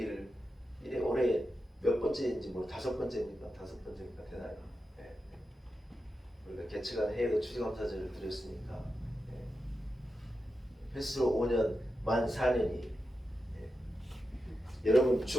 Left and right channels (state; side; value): normal; both; correlation 0.89